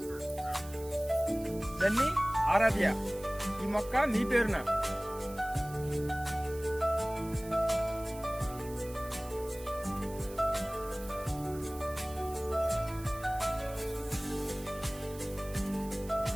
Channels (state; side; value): noise; right; hiss, 18 dB below the sound